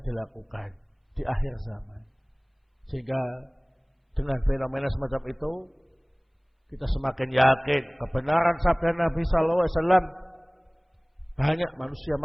dilakukan di akhir zaman. Sehingga dengan fenomena semacam itu kita semakin yakin kebenaran sabda Nabi sallallahu alaihi wasallam, banyak manusia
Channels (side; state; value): both; identical; correlation 1.00